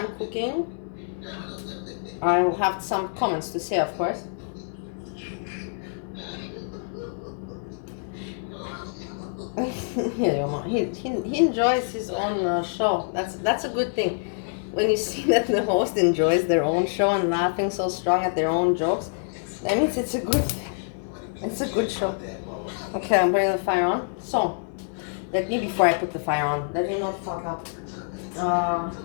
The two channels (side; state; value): right; silent; digital silence